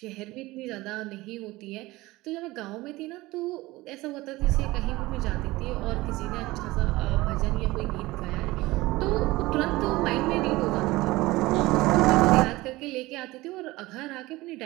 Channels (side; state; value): left; quieter; 19.7 dB